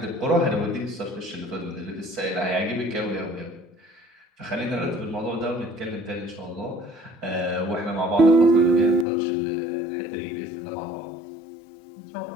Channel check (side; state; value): right; drops out; at 9.1 s